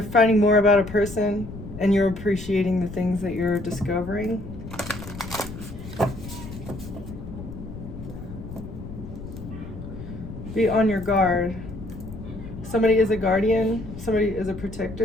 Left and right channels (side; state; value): left; noise; rumble, 12 dB below the sound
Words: finding more about a person, and you're appreciating the things that you're discovering. Be on your guard. Somebody is a guardian. Somebody is a